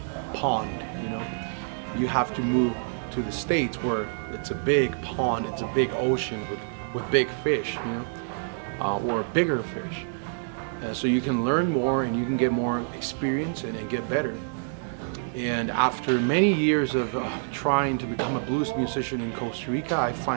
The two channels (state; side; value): silent; left; digital silence